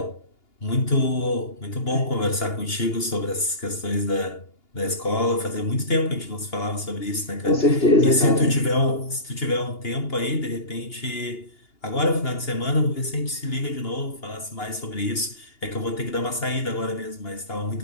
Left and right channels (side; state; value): right; late; 2.8 ms